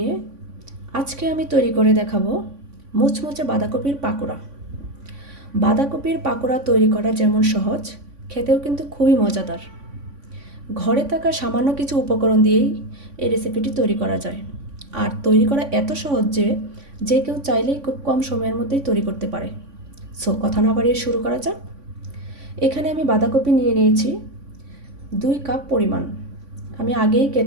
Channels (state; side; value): late; left; 3.5 ms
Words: আজকে আমি তৈরি করে দেখাবো মুচমুচে বাঁধাকপির পাকোড়া। বাঁধাকপির পাকোড়া তৈরি করা যেমন সহজ, খেতেও কিন্তু খুবই মজাদার। ঘরে থাকা সামান্য কিছু উপকরণ দিয়েই এই রেসিপিটি তৈরি করা যায়। আর তৈরি করা এত সহজ যে কেউ চাইলেই খুব কম সময়ের মধ্যেই তৈরি করতে পারে। সো কথা না বাড়িয়ে শুরু করা যাক। এখানে আমি বাঁধাকপি নিয়ে নিয়েছি 2 কাপ পরিমাণ। আমি আগেই